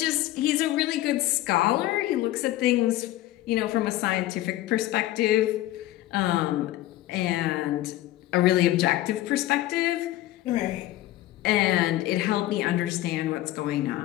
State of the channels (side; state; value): right; quieter; 15.3 dB